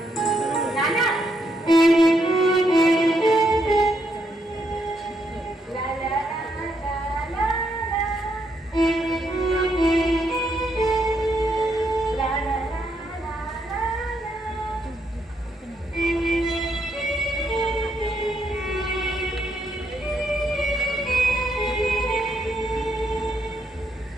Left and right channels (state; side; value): normal; both; correlation 0.76